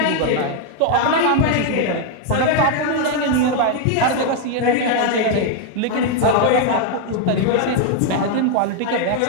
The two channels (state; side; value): different; both; correlation 0.00